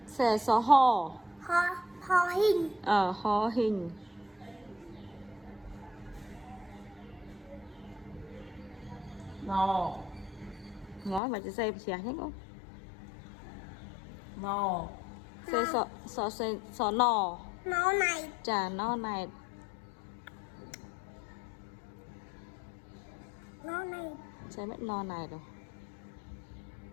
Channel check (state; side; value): drops out; right; at 11.2 s